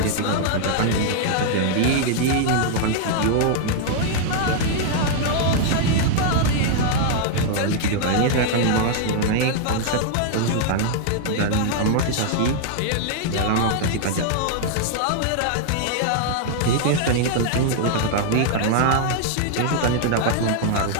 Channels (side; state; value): both; different; correlation -0.01